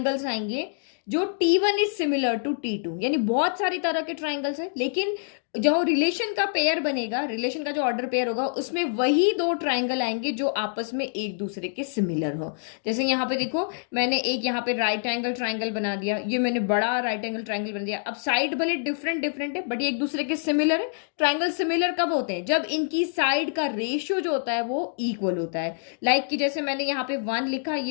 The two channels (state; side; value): silent; right; digital silence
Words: आएंगे जो T1 is similar to T2, यानी बहुत सारी तरह के ट्राइंगल्स है, लेकिन जो रिलेशन का पेयर बनेगा, रिलेशन का जो ऑर्डर पेयर होगा उसमें वही दो ट्राइंगल आएंगे जो आपस में एक दूसरे के सिमिलर हो। जैसे यहाँ पे देखो, मैंने एक यहाँ पे राइट एंगल ट्राइंगल बना दिया, ये मैंने बड़ा राइट एंगल ट्राइंगल बना दिया। अब साइड भले डिफरेंट है बट ये एक दूसरे के सिमिलर है। ट्राइंगल सिमिलर कब होते हैं, जब इनकी साइड का रेशियो जो होता है वो इक्वल होता है। लाइक कि जैसे मैंने यहाँ पे 1 लिखा,